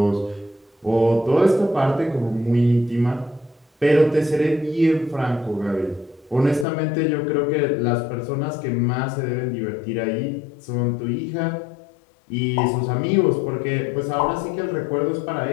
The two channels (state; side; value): drops out; right; at 6.7 s